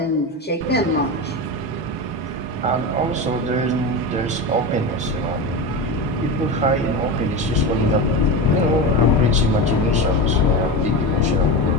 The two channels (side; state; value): both; normal; correlation 0.21